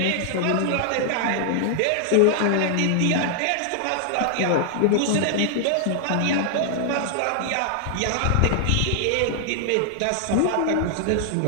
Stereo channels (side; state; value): both; different; correlation 0.00